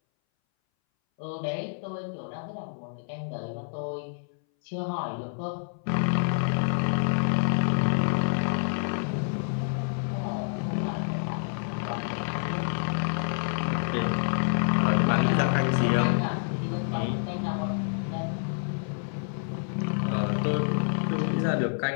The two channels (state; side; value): silent; right; 59 dB below the other